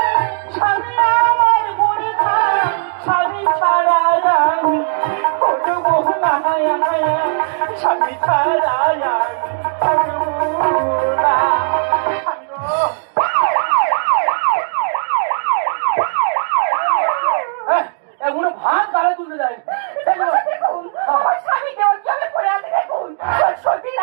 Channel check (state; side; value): silent; left; digital silence